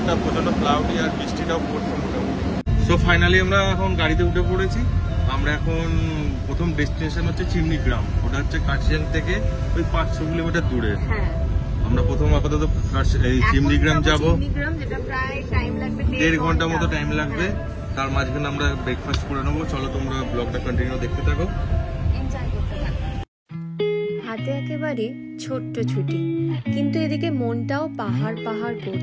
প্রচন্ড ক্লাউডি আর বৃষ্টিটাও পড়ছে মোটামুটি। সো ফাইনালি আমরা এখন গাড়িতে উঠে পড়েছি। আমরা এখন প্রথম ডেস্টিনেশন হচ্ছে চিমনিগ্রাম। ওটা হচ্ছে কার্শিয়াং থেকে ওই 500 কিলোমিটার দূরে। আমরা প্রথম আপাতত এই চিমনিগ্রাম যাব, 1.5 ঘন্টা মতো টাইম লাগবে। তার মাঝখানে আমরা ব্রেকফাস্ট করে নেবো। চলো তোমরা ব্লগটা কন্টিনিউ দেখতে থাকো। হাতে একেবারে ছোট্ট ছুটি, কিন্তু এদিকে মনটাও পাহাড় পাহাড়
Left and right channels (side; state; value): both; identical; correlation 1.00